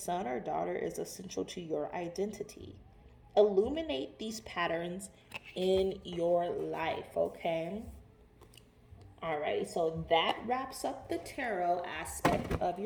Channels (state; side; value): identical; both; correlation 1.00